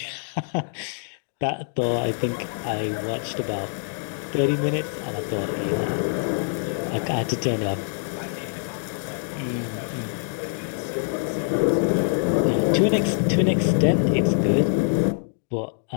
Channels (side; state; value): right; silent; digital silence